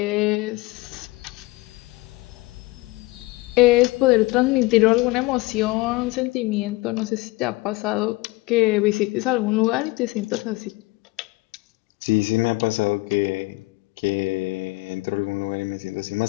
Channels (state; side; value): quieter; right; 22.2 dB